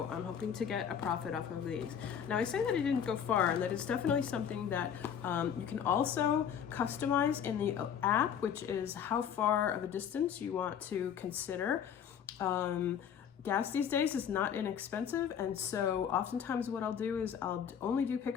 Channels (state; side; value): quieter; right; 8.3 dB